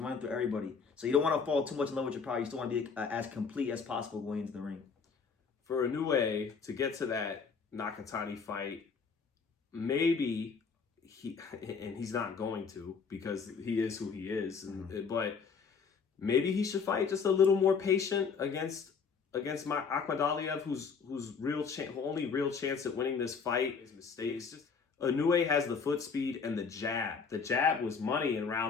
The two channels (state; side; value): quieter; right; 5.6 dB